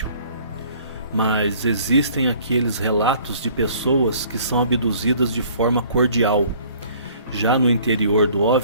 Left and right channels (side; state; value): both; inverted; correlation -0.55